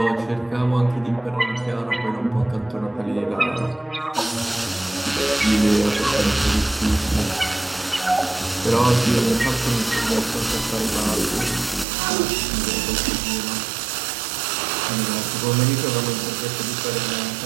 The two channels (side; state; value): left; drops out; at 11.9 s